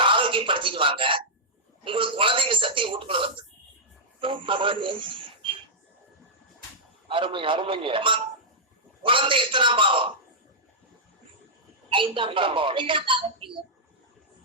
ஆரோக்கியப்படுத்திட்டு வாங்க. உங்களுக்கு குழந்தைங்க சக்தி வீட்டுக்குள்ள வந்து குழந்தை எத்தனாம் பாவம்? 5ஆம் பாவம்.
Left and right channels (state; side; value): normal; both; correlation -0.09